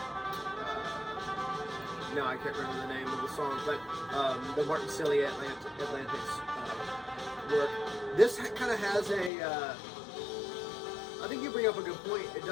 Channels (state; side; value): drops out; right; at 9.3 s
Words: No, I can't remember the name of the song, but the Martin Cillian Atlantic's work. This kind of has a. I think you bring up a good point. It